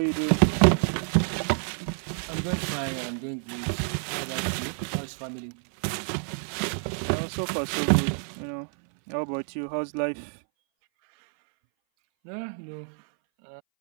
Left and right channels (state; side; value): silent; left; 59 dB below the other